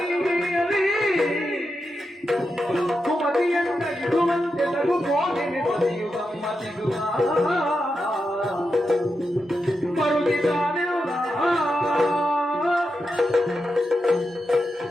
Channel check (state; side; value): normal; both; correlation 0.87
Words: ಕುಮತಿಯನ್ನ ಮನವು ಕೋಗಿಲೆ ಬದಿಯು ಗಮ್ಮತ್ತಿಗುವ ಮರುಗಿದ್ದಾನೆ